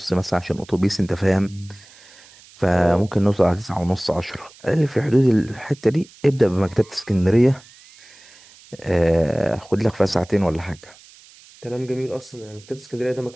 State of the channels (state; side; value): noise; right; hiss, 24 dB below the sound